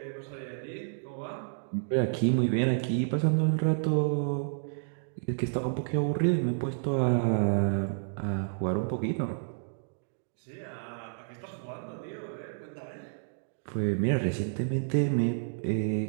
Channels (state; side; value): silent; left; digital silence